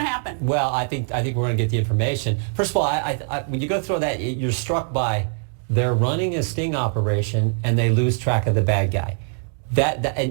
to happen? Well, I think we're going to get the information. First of all, when you go through that, you're struck by they're running a sting operation and they lose track of the bad guy.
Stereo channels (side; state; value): left; silent; 55 dB below the other